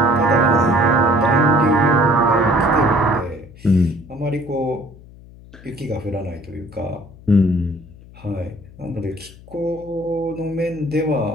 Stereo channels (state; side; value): noise; left; hum, 21 dB below the sound